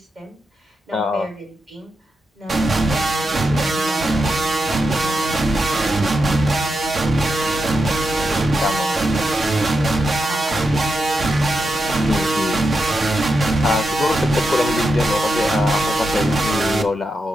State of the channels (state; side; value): normal; both; correlation 0.87